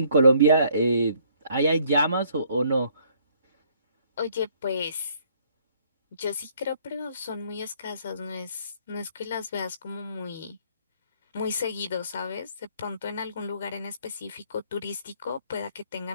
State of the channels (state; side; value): inverted; both; correlation -0.64